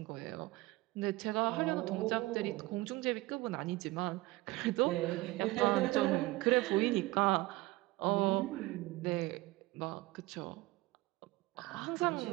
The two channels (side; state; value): left; quieter; 19.9 dB